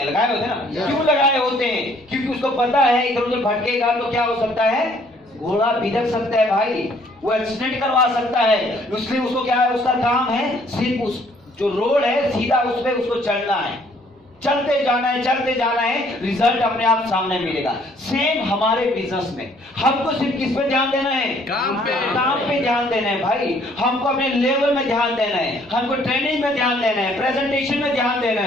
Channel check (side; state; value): both; normal; correlation 0.62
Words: हैं ना। क्यों लगाए होते हैं? क्योंकि उसको पता है इधर उधर भटकेगा तो क्या हो सकता है, घोड़ा बिदक सकता है भाई, वो एक्सीडेंट करवा सकता है। इसलिए उसको क्या है, उसका काम है सिर्फ उस जो रोड है सीधा उस पे उसको चलना है, चलते जाना है, चलते जाना है, रिजल्ट अपने आप सामने मिलेगा। सेम हमारे बिजनेस में हमको सिर्फ किस पे ध्यान देना है, काम पे ध्यान देना है भाई। हमको अपने लेवल में ध्यान देना है, हमको ट्रेनिंग में ध्यान देना है, प्रेजेंटेशन में ध्यान देना